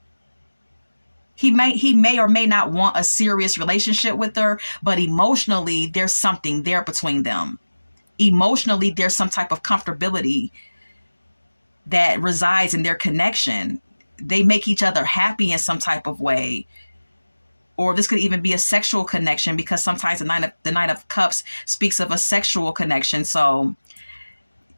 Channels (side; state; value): both; inverted; correlation -1.00